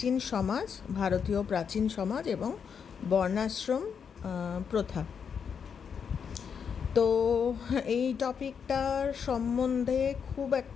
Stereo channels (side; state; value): right; quieter; 6.9 dB